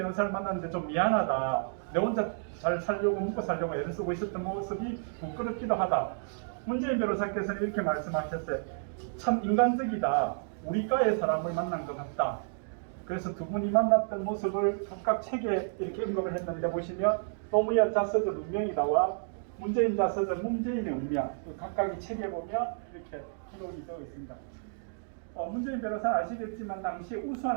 만났는데 좀 미안하다. 내 혼자 잘 살려고 먹고 살려고 애를 쓰고 있었던 모습이 부끄럽기도 하다. 문재인 변호사께서는 이렇게 말씀하셨어요. 참 인간적이다. 우리 과의 사람을 만난 것 같다. 그래서 두 분이 만났던 모습을 각각 책에 이렇게 언급을 했는데, 보시면 노무현 자서전 운명이다와 문재인 자서전 문재인의 운명, 각각의 책에 보면 이렇게 기록이 되어 있습니다. 문재인 변호사는 아시겠지만 당시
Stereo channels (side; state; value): left; silent; digital silence